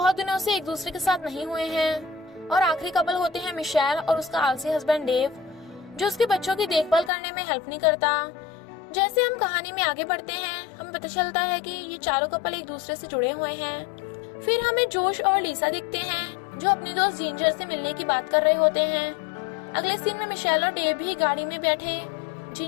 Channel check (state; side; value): drops out; right; at 7.1 s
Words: दिनों से एक दूसरे के साथ नहीं हुए हैं। और आखिरी कपल होते हैं मिशेल और उसका आलसी हस्बैंड डेव, जो उसके बच्चों की देखभाल करने में हेल्प नहीं करता। जैसे हम कहानी में आगे बढ़ते हैं, हमें पता चलता है कि ये चारों कपल एक दूसरे से जुड़े हुए हैं। फिर हमें जोश और लीसा दिखते हैं जो अपनी दोस्त जिंजर से मिलने की बात कर रहे होते हैं। अगले सीन में मिशेल और डेव भी गाड़ी में बैठे